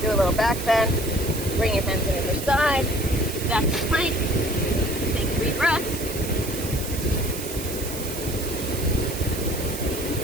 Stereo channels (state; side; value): noise; right; hiss, 9 dB below the sound